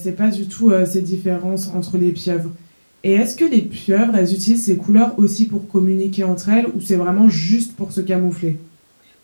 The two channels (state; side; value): inverted; both; correlation -1.00